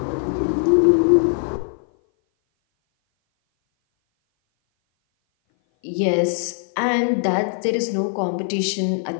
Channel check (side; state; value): right; silent; 58 dB below the other